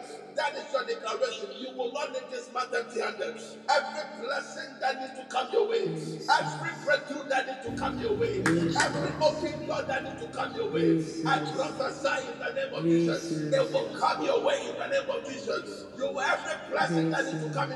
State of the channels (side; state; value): both; identical; correlation 1.00